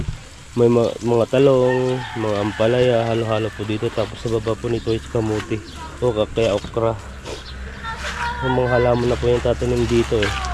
May mga talong, mga ampalaya, halo-halo po dito. Tapos sa baba po nito is kamuti o kaya okra. Yung mga halaman na po yung tatanim dito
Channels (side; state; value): both; identical; correlation 1.00